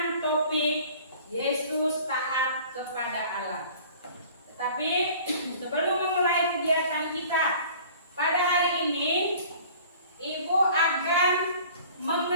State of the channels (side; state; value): both; inverted; correlation -0.48